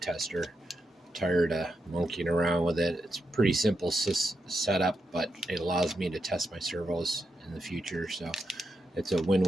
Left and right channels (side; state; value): both; normal; correlation 0.85